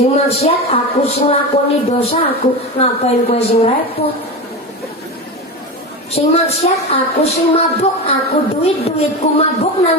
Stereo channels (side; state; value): both; normal; correlation 0.22